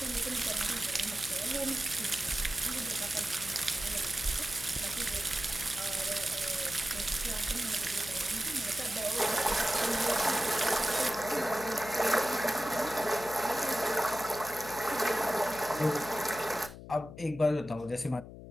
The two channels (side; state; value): left; noise; hum, 14 dB below the sound